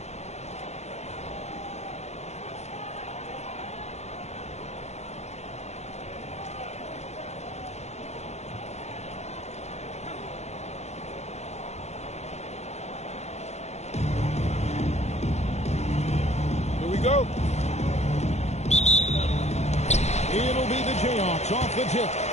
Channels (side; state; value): right; late; 0.32 ms